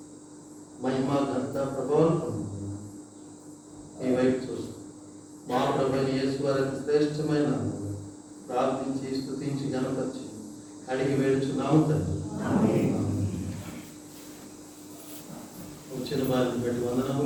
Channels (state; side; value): identical; both; correlation 1.00